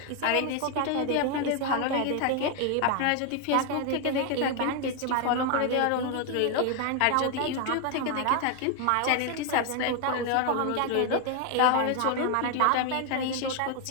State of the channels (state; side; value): different; both; correlation 0.01